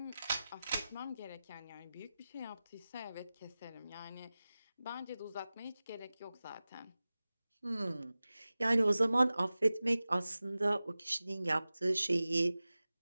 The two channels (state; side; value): inverted; both; correlation -0.96